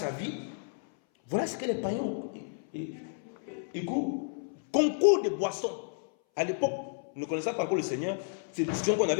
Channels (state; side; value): silent; right; 57 dB below the other